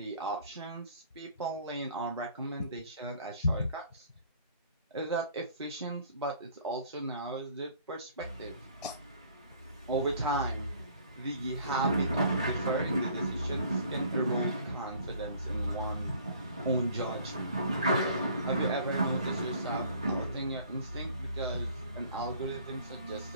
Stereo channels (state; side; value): inverted; both; correlation -0.55